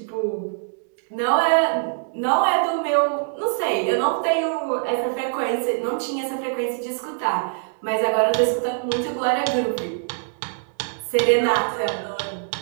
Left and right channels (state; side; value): silent; left; 63 dB below the other